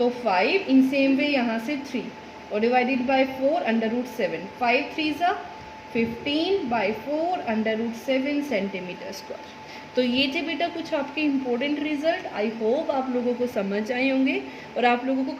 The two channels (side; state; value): both; identical; correlation 1.00